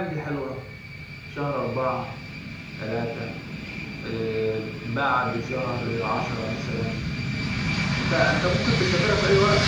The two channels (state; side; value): identical; both; correlation 1.00